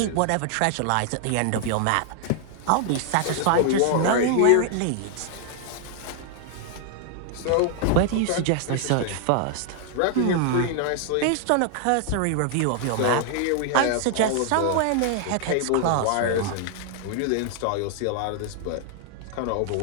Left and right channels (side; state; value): both; different; correlation 0.00